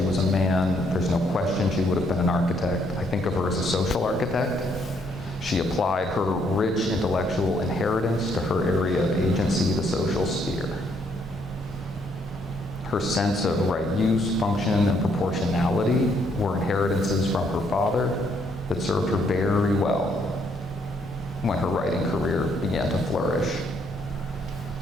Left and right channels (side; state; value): both; normal; correlation 0.70